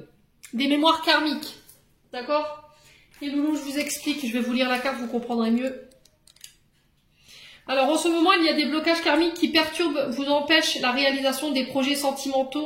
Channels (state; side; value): identical; both; correlation 1.00